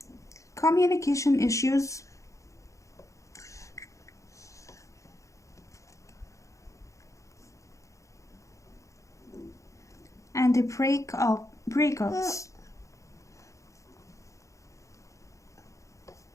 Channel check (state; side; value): late; right; 0.15 ms